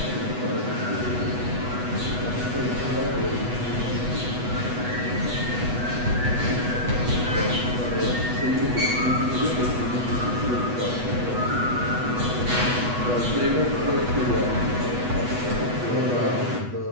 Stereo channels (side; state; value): left; late; 8.1 ms